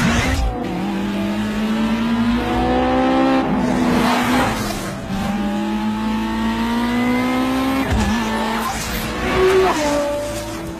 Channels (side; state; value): both; identical; correlation 1.00